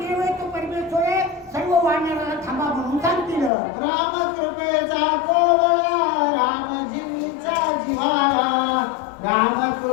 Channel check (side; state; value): right; drops out; at 3.5 s